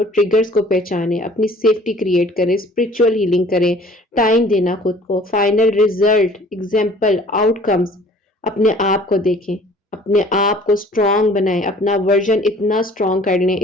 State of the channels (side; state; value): both; normal; correlation 0.51